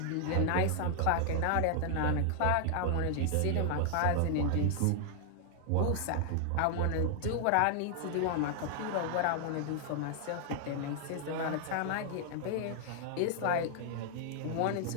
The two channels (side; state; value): both; different; correlation 0.00